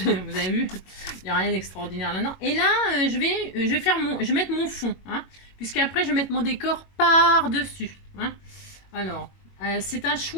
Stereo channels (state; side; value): late; right; 22 ms